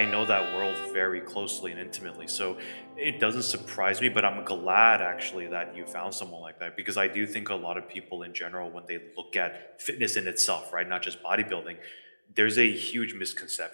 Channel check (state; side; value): inverted; both; correlation -1.00